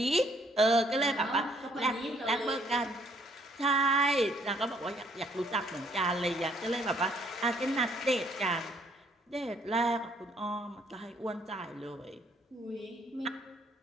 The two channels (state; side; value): normal; both; correlation 0.65